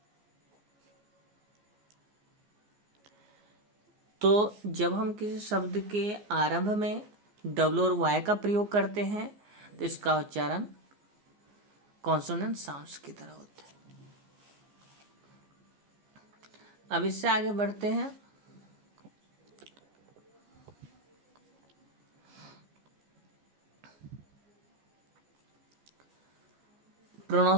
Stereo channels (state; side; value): late; left; 14 ms